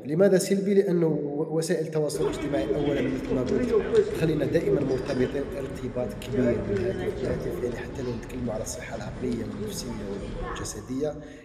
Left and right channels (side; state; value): both; identical; correlation 1.00